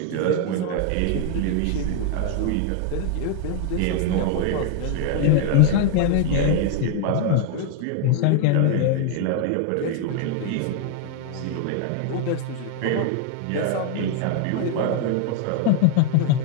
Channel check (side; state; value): both; different; correlation 0.00